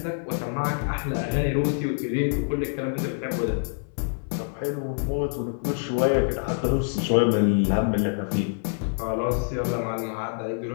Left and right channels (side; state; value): right; silent; 61 dB below the other